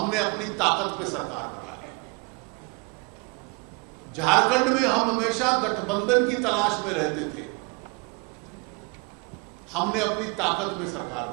अपनी ताकत पे सरकार बना ली। झारखंड में हम हमेशा गठबंधन की तलाश में रहते थे, हमने अपनी ताकत में सरकार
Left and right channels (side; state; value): left; quieter; 31.6 dB